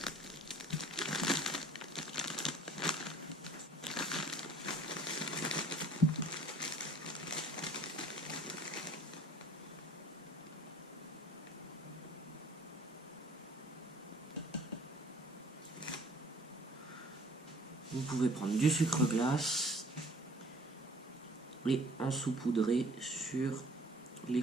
Vous pouvez prendre du sucre glace et en saupoudrer sur les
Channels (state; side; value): normal; both; correlation 0.52